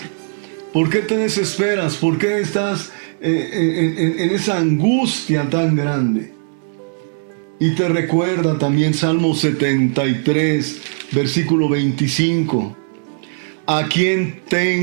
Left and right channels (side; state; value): left; silent; digital silence